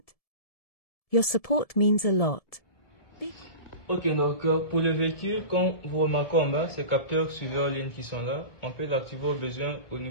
Your support means a lot. Ok, donc pour le véhicule, comme vous remarquez en bas, ces capteurs suiveurs ligne qui sont là, on peut l'activer au besoin au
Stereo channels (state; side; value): late; right; 1.7 ms